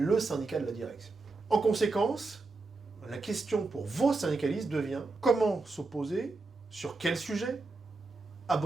syndicat de la direction. En conséquence, la question pour vos syndicalistes devient comment s'opposer, sur quel sujet, à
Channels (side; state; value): left; quieter; 3.6 dB